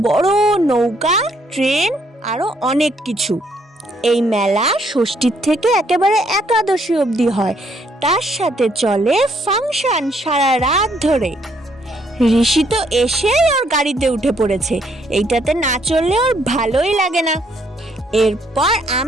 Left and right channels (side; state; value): both; normal; correlation 0.69